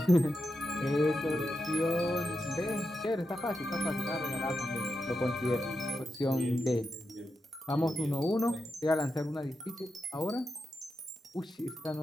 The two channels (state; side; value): normal; both; correlation 0.87